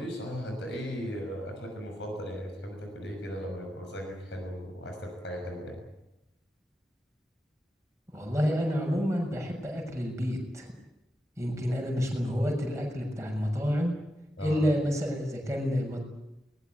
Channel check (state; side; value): normal; both; correlation 0.88